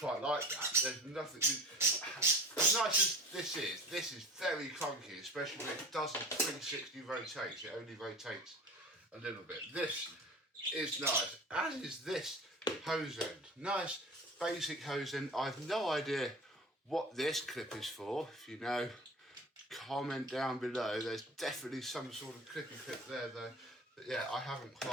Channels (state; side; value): normal; both; correlation 0.37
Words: like that. There's nothing, as nice as this is very clunky, especially when it doesn't 360 rotate. It only rotates a little bit. This is nice, as is this hose end. Nice basic hose end. I've no idea what this clip is for. If you know, comment down below. There's definitely some sort of clippy clip there though. But yeah, I haven't